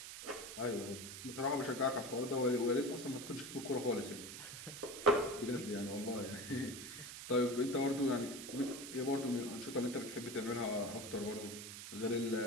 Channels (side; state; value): right; noise; hiss, 9 dB below the sound